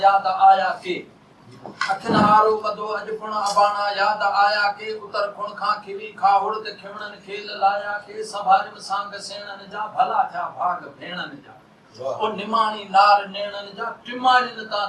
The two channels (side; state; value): both; identical; correlation 1.00